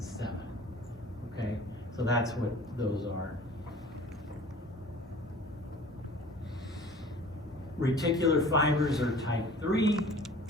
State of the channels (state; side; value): normal; both; correlation 0.45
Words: 7. Okay, so that's what those are. Reticular fibers are type 3,